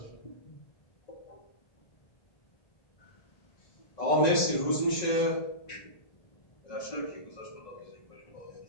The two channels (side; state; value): right; late; 1.9 ms